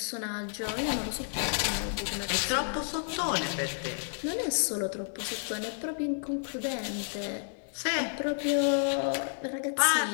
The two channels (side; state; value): right; silent; 57 dB below the other